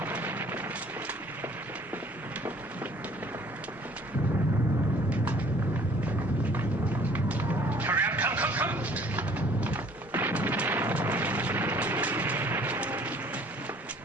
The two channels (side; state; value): both; normal; correlation 0.55